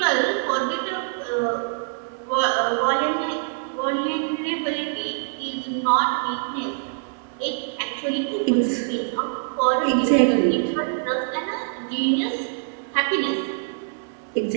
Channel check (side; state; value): left; silent; 62 dB below the other